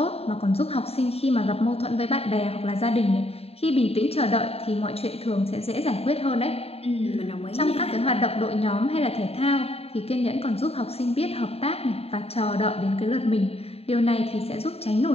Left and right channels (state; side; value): late; right; 0.29 ms